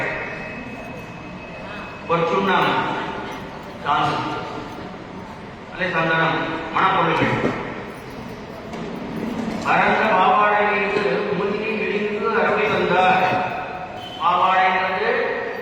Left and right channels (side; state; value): both; identical; correlation 1.00